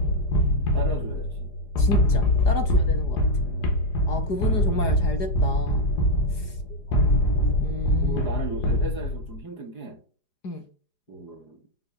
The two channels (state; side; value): late; right; 4.9 ms